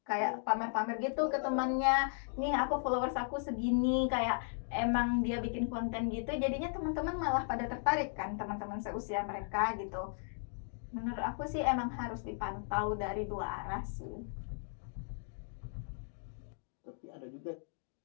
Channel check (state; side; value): silent; right; digital silence